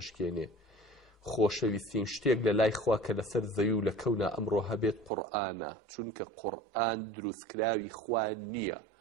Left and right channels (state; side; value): drops out; left; at 5.1 s